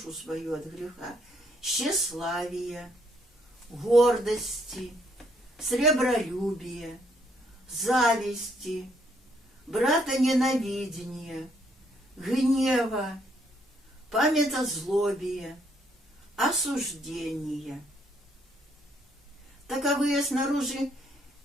свою от греха, тщеславия, гордости, сребролюбия, зависти, братоненавидения, гнева, памятозлобия, осуждения. Таковые снаружи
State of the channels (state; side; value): normal; both; correlation 0.70